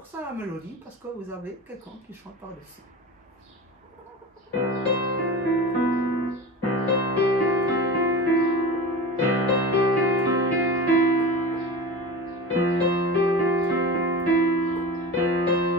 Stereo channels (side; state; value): both; normal; correlation 0.31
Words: sans la mélodie, parce que vous avez quelqu'un qui chante par-dessus.